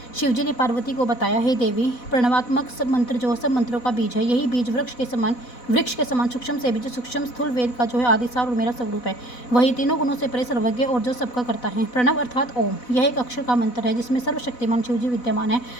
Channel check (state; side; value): late; right; 4.0 ms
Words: शिवजी ने पार्वती को बताया, हे देवी, प्रणवात्मक सब मंत्र जो सब मंत्रों का बीज है, यही बीज वृक्ष के समान सूक्ष्म से बीज सूक्ष्म स्थूल वेद का जो है आदिसार और मेरा स्वरूप है। वही तीनों गुणों से परे सर्वज्ञ और जो सबका करता है। प्रणव अर्थात ओम, यह एक अक्षर का मंत्र है जिसमें सर्वशक्तिमान शिवजी विद्यमान है